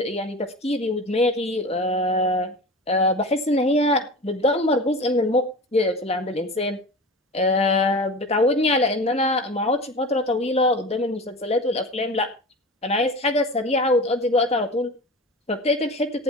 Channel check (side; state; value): both; normal; correlation 0.33